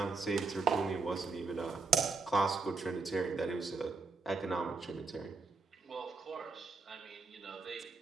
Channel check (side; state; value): left; quieter; 4.3 dB